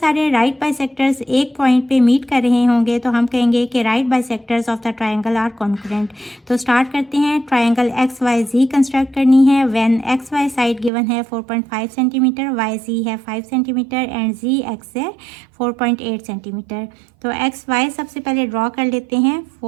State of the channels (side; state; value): left; drops out; at 10.9 s